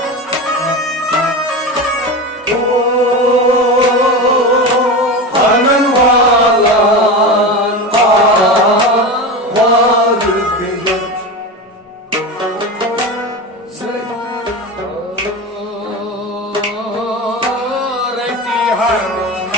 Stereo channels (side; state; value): both; normal; correlation 0.24